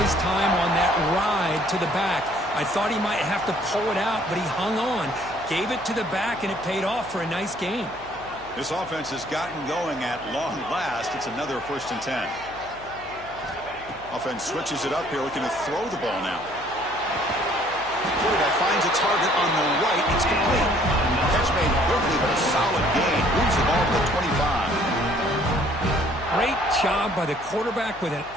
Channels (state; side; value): noise; left; hum, 20 dB below the sound